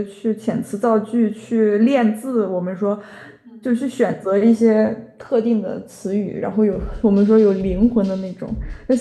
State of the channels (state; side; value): identical; both; correlation 1.00